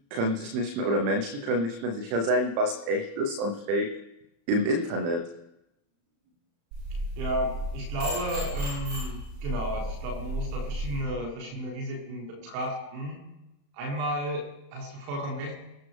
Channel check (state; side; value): late; left; 35 ms